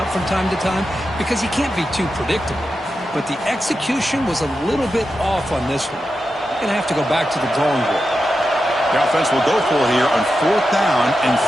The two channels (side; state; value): both; normal; correlation 0.89